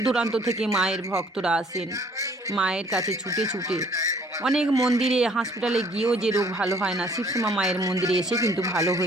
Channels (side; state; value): both; normal; correlation 0.59